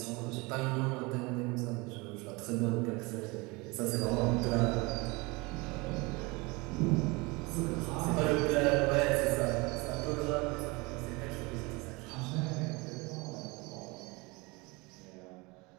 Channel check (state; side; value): quieter; left; 25.6 dB